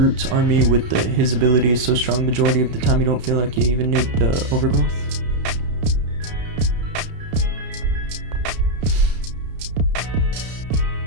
army with his ability is so strong, majority of the time you don't feel like you even need the overgrowth.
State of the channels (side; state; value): left; late; 31 ms